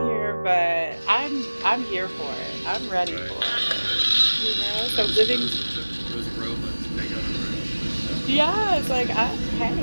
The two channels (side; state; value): both; inverted; correlation -1.00